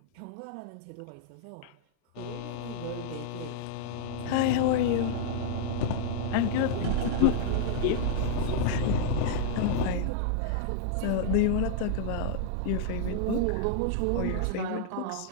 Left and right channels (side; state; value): both; different; correlation -0.01